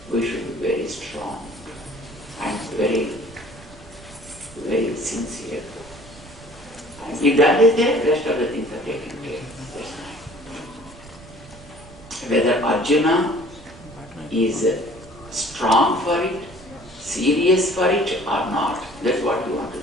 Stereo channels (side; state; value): right; noise; rumble, 20 dB below the sound